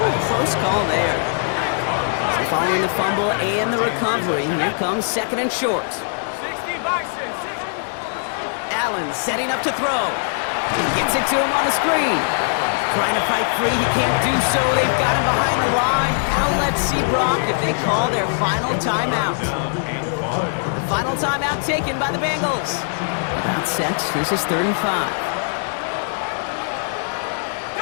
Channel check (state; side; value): silent; right; digital silence